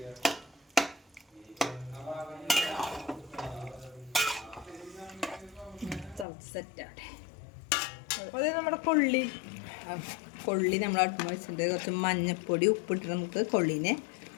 സെറ്റാട്ടെ. അത് നമ്മുടെ കൊള്ളി നമ്മൾ അടുപ്പ് വെച്ചിട്ട് കുറച്ച് മഞ്ഞപ്പൊടി ഉപ്പിട്ട് നമുക്ക് കൊള്ളിനെ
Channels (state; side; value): drops out; right; at 6.2 s